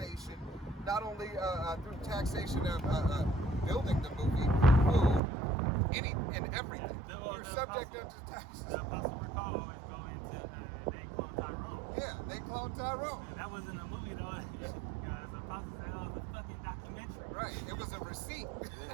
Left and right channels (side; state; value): left; drops out; at 5.2 s